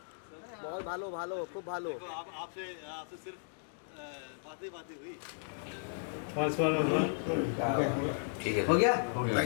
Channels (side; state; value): right; silent; digital silence